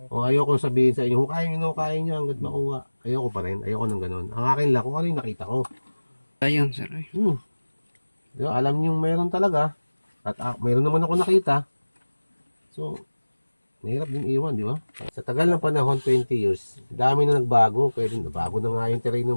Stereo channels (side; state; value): both; inverted; correlation -1.00